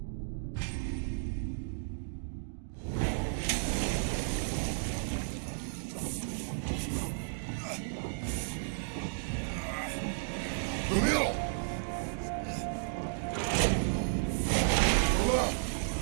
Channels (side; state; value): left; silent; digital silence